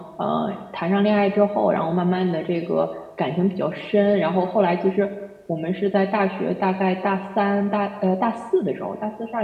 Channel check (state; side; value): identical; both; correlation 1.00